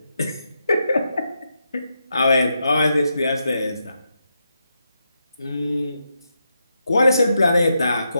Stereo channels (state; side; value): inverted; both; correlation -0.84